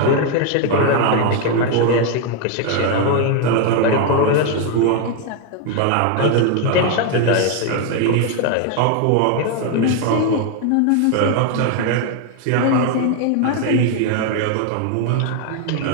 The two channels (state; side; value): different; both; correlation 0.01